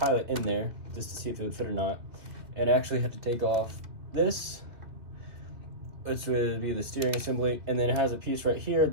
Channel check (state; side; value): late; left; 2.6 ms